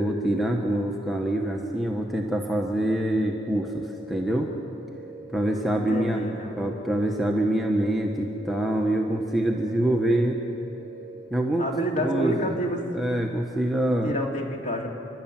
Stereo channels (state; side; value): normal; both; correlation 0.78